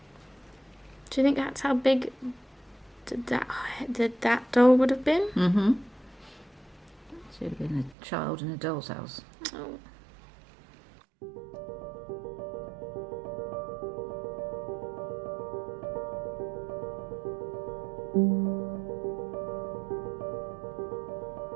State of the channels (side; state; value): left; drops out; at 8.0 s